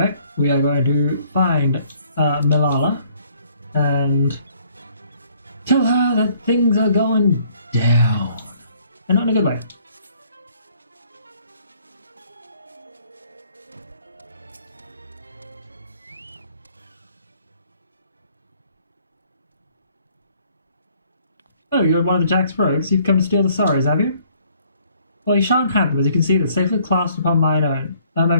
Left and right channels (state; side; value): inverted; both; correlation -0.61